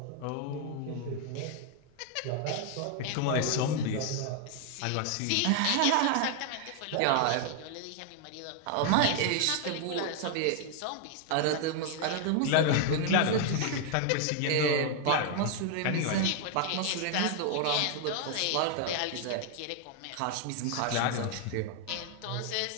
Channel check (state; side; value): different; both; correlation 0.00